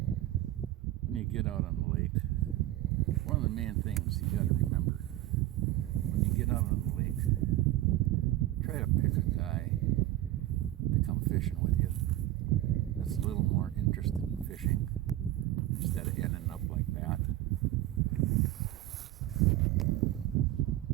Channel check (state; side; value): quieter; left; 14.9 dB